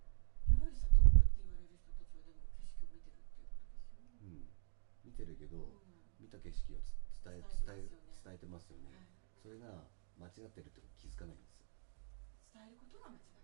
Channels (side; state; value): left; silent; digital silence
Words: いわゆる悟ったって言われる人たちはでも景色を見てるっていうことですよね。見てるけど、見た景色を伝えてますよね、はい、それが間違ってるってこと気づかないんです。伝えることが間違って